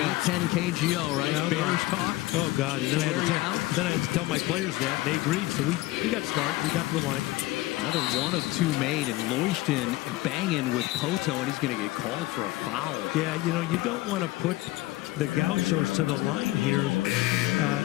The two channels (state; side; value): quieter; right; 18.3 dB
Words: KGO, right? Yeah, Bears talk. Oh God! And then I had to tell my players that, and they agreed. So we got smart. We got to the line. Another 1 of 2 made, and Loishton banging with Poto, and he's going to get called for a foul. Yeah, you don't want to put the Gauchos to the line here,